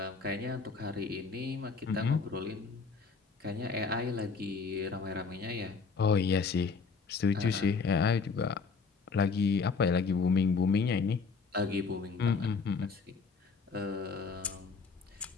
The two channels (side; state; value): right; quieter; 4.9 dB